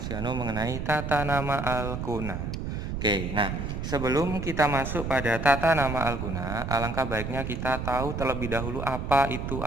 Yano mengenai tata nama Al-Kuna. Oke, nah sebelum kita masuk pada tata nama Al-Kuna, alangkah baiknya kita tahu terlebih dahulu apa itu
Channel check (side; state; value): right; noise; rumble, 4 dB below the sound